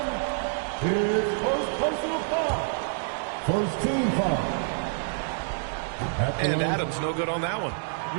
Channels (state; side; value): silent; left; digital silence